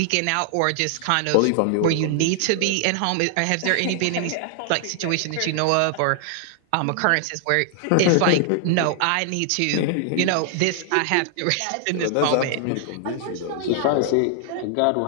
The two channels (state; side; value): different; both; correlation 0.00